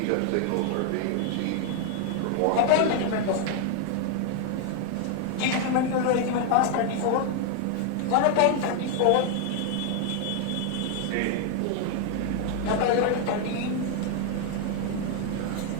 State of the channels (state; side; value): different; both; correlation 0.00